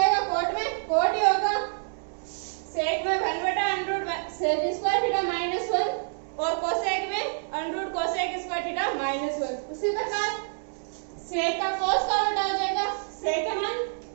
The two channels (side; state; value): left; silent; digital silence